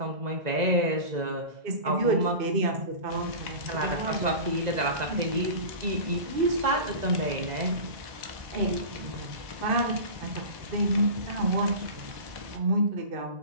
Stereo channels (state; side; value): late; left; 2.0 ms